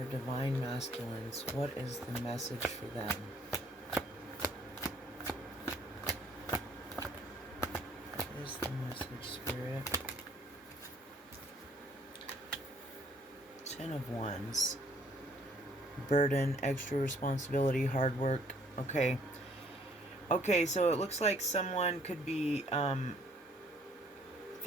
Divine Masculines, what is the message for them? What is the message, Spirit? Ten of Wands. Burden, extra responsibility, hard work. Okay, so it looks like someone could be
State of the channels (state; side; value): normal; both; correlation 0.62